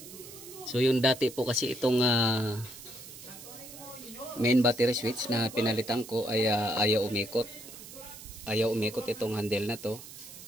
So yung dati po kasi itong main battery switch na pinalitan ko ay ayaw umikot. Ayaw umikot itong handle na to.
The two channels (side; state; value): right; noise; hiss, 15 dB below the sound